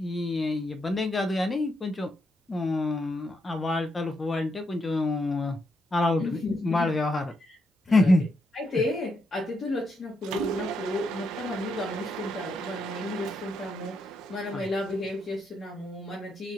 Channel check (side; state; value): both; normal; correlation 0.80